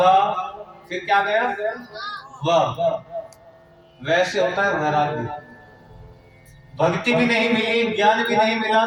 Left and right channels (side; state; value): both; identical; correlation 1.00